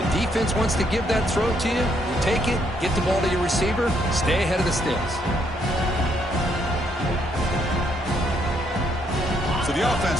defense wants to give that throw to you. You take it, get the ball to your receiver, stay ahead of the sticks. So the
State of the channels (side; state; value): both; normal; correlation 0.72